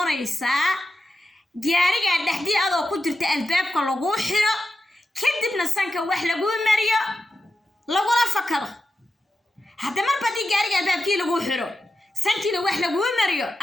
gaariga dhaxdii adoo ku jirta albaabka lagu xiro kadibna sanka wax lagu mariyo lagula fakado hadda mar badii gaariga albaabkii lagu xiro sankiina wax lagu mariyo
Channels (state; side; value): normal; both; correlation 0.90